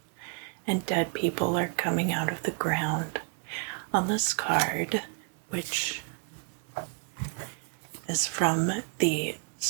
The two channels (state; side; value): quieter; left; 37.1 dB